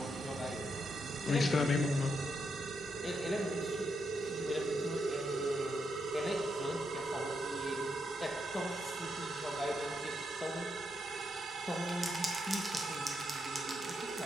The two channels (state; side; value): normal; both; correlation 0.81